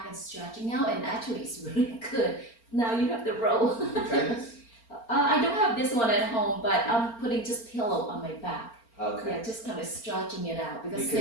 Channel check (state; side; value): late; right; 4.4 ms